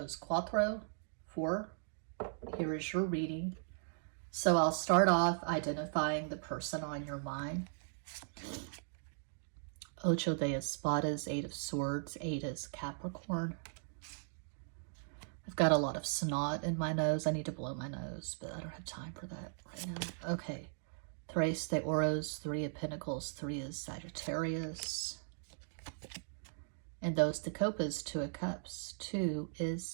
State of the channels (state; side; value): silent; left; digital silence